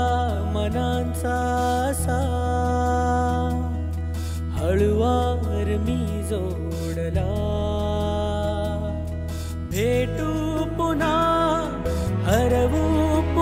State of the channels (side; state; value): both; identical; correlation 1.00